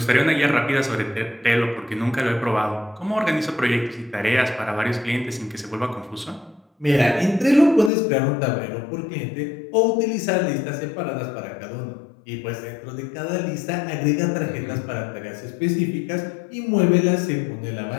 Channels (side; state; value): right; drops out; at 7.9 s